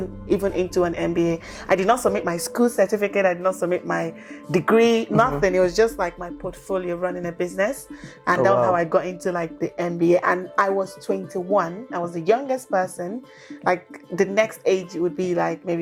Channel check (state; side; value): identical; both; correlation 1.00